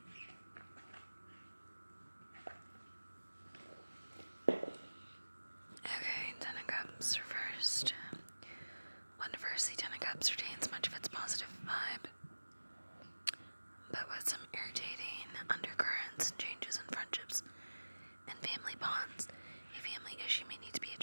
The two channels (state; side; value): inverted; both; correlation -1.00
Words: in. Okay, Ten of Cups reversed. When reversed, the Ten of Cups retains much of its positive vibe, but with some irritating undercurrents and changes in friendships and family bonds. A family issue may need to be